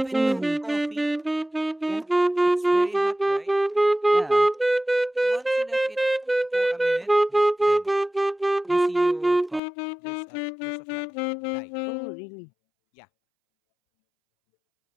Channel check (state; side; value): drops out; right; at 9.6 s